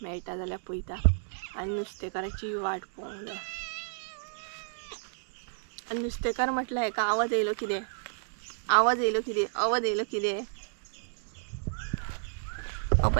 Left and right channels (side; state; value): left; silent; digital silence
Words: मेळटा जाल्यार पळयता. आनी नुस्तेकाराची वाट पळोवंक जाय. आनी नुस्तेकार म्हटल्यार हेका आवाज येयलो कितें